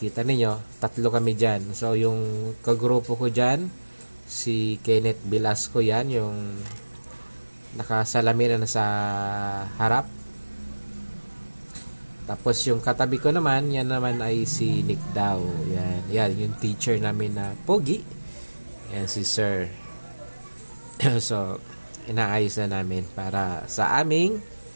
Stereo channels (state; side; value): inverted; both; correlation -1.00